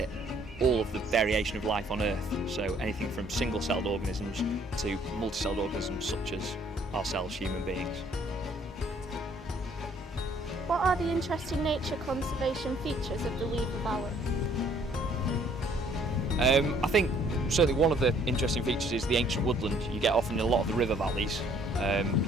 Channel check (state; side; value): normal; both; correlation 0.61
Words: all of the variation of life on Earth, so anything from single-celled organisms to multi-celled organisms such as ourselves, human beings. What are the interesting nature conservation features of the Weaver Valley? I think certainly one of the interesting features is the ancient woodland you get often in a lot of the river valleys.